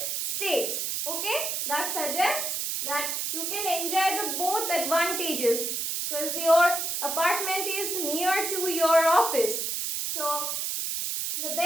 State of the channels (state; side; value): noise; right; hiss, 1 dB below the sound